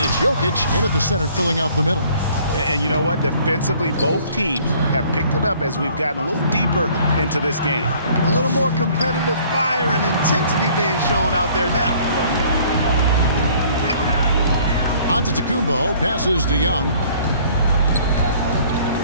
it's Jokic in at the center, filling out the middle. And you know what? Defensively, both teams have picked it up as we've gotten a little deeper into this game. A little more competitive fire and intensity being shown out there now. Antetokounmpo passes to Young.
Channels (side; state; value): both; inverted; correlation -0.56